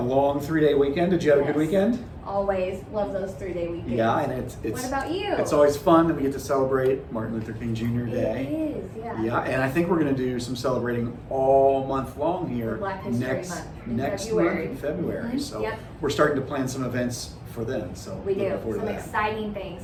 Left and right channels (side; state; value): both; identical; correlation 1.00